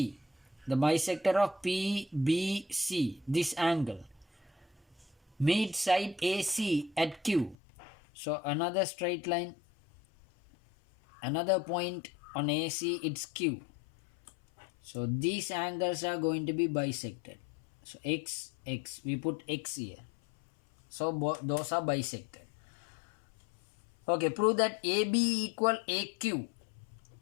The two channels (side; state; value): right; drops out; at 7.6 s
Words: The bisector of PBC, this angle, meet side AC at Q. So another straight line, another point on AC, it's Q. So these angles are going to be bisected. So X, we put X here. So those are bisected. Okay, prove that AB equal AQ.